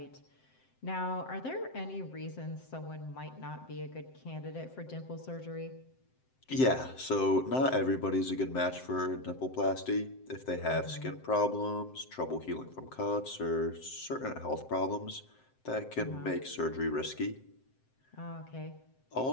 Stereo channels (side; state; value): right; late; 7.7 ms